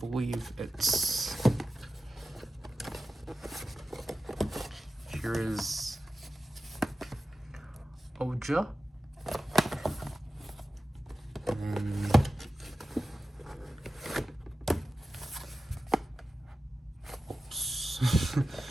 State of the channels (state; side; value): normal; both; correlation 0.94